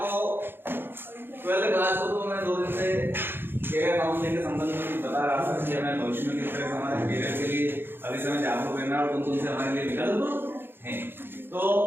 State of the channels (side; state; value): left; late; 0.10 ms